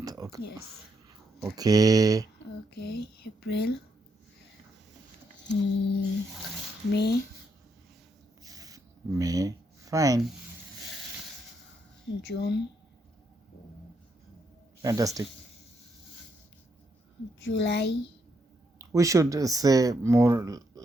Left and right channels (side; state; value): both; normal; correlation 0.77